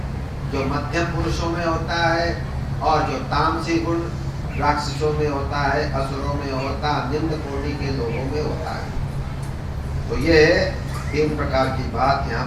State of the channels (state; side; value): identical; both; correlation 1.00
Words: जो मध्यम पुरुषों में होता है, और जो तामसी गुण राक्षसों में होता है, असुरों में होता है, निम्न कोटि के लोगों में होता है। तो ये 3 प्रकार की बात यहाँ